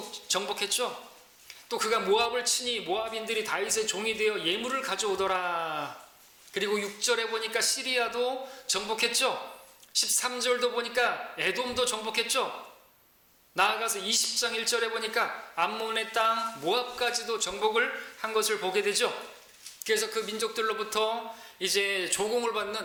정복했죠. 또 그가 모압을 치니 모압인들이 다윗의 종이 되어 예물을 가져오더라. 그리고 6절에 보니까 시리아도 정복했죠. 13절도 보니까 에돔도 정복했죠. 나아가서 20장 1절에 보니까 암몬의 땅 모압까지도 정복을 한 것을 보게 되죠. 그래서 그 민족들로부터 이제 조공을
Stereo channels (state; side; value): identical; both; correlation 1.00